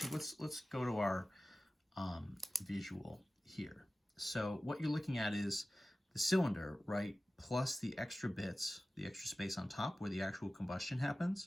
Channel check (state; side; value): normal; both; correlation 0.96